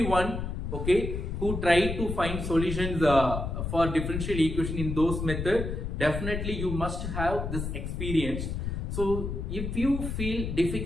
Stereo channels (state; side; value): noise; left; rumble, 4 dB below the sound